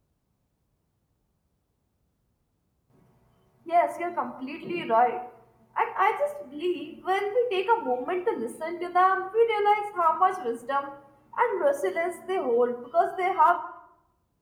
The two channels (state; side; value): identical; both; correlation 1.00